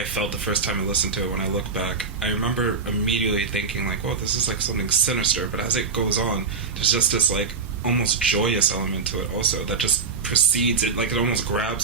felt the first time I listened to it, when I look back, I remember immediately thinking, like, well, this is like something sinister, but as it goes on, there's just this, like, almost joyous element to it also that just precedes it, like it almost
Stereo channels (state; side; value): quieter; left; 4.9 dB